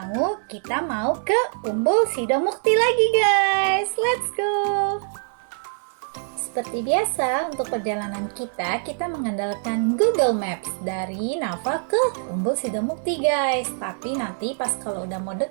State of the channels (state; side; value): silent; left; 63 dB below the other